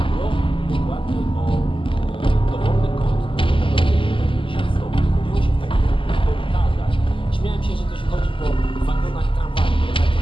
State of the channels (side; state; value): right; late; 0.25 ms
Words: dokładnie o dowolny kąt, który 90 stopni. Chodziło się w takich korytarzach. Śmiałem się, że to się chodzi po wagonach tramwaju, ale tak to